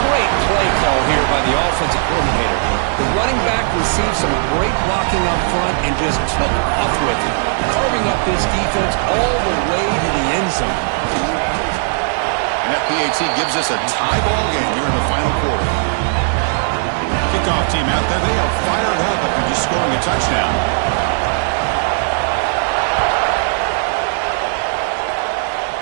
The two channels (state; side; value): silent; left; digital silence